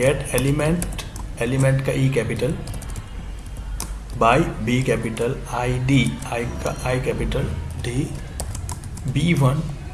element, element का E capital, by B capital, ID, I का I capital, D, B1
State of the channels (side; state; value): both; identical; correlation 1.00